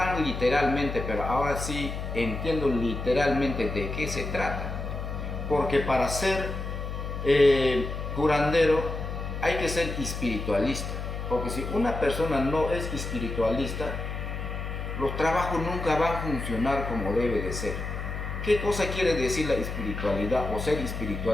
literalmente, pero ahora sí entiendo literalmente de qué se trata. Porque para ser curandero hay que ser espiritualista. Porque si una persona no es espiritualista, los trabajos nunca van a funcionar como debe de ser. ¿Qué cosa quiere decir la espiritualidad o ser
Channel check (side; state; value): left; noise; hum, 5 dB below the sound